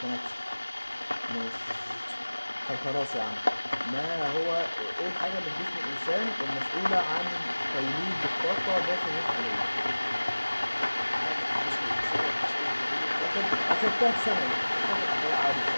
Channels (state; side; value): inverted; both; correlation -1.00